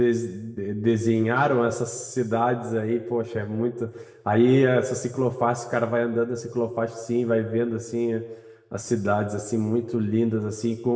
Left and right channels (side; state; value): both; identical; correlation 1.00